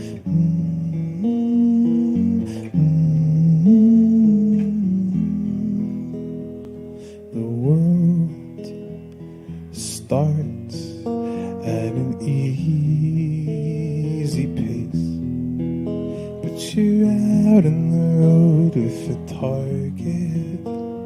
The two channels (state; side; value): identical; both; correlation 1.00